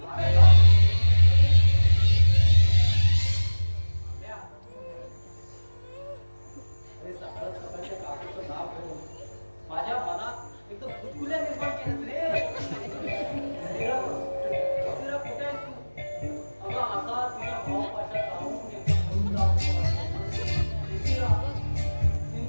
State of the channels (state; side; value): inverted; both; correlation -1.00